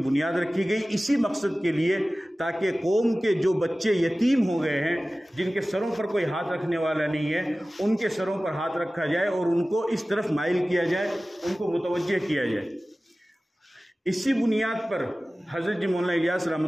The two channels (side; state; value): both; normal; correlation 0.97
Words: رکھی گئی اسی مقصد کے لیے، تاکہ قوم کے جو بچے یتیم ہو گئے ہیں، جن کے سروں پر کوئی ہاتھ رکھنے والا نہیں ہے، ان کے سروں پر ہاتھ رکھا جائے اور ان کو اس طرف مائل کیا جائے، ان کو متوجہ کیا جائے۔ اسی بنیاد پر حضرت مولانا الیاس